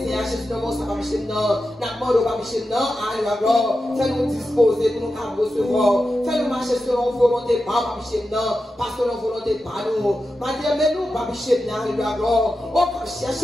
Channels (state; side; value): normal; both; correlation 0.91